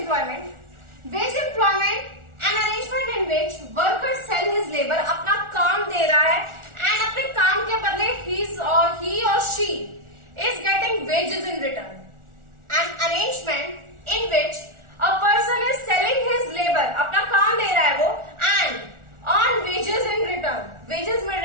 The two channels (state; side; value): late; left; 1.4 ms